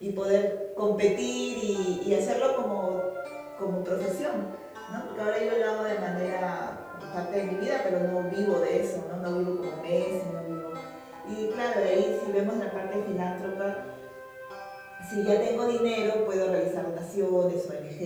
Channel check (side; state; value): both; identical; correlation 1.00